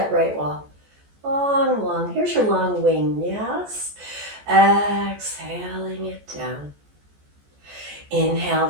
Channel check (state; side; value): late; left; 14 ms